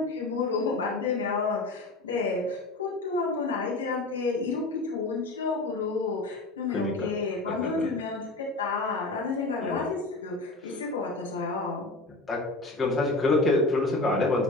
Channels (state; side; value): quieter; right; 3.0 dB